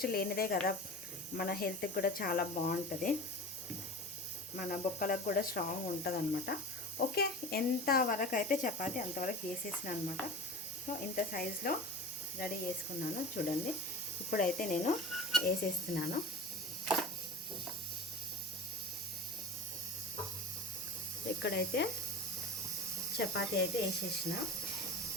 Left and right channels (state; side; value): normal; both; correlation 0.33